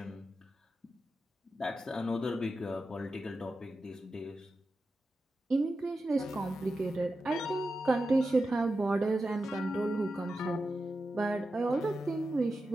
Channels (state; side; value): normal; both; correlation 0.90